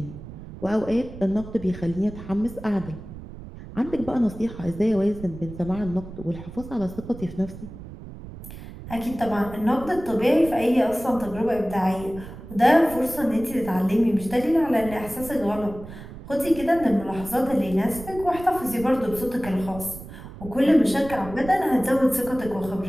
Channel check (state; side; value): noise; right; rumble, 13 dB below the sound